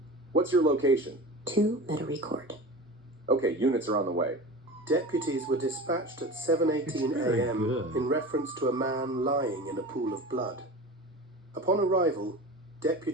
What's your location? 2 Metairie Court. Okay, units are on the way. Deputies were dispatched at 7:18 a.m. in reference to a man lying in a pool of blood. Upon arrival,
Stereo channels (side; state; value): both; normal; correlation 0.32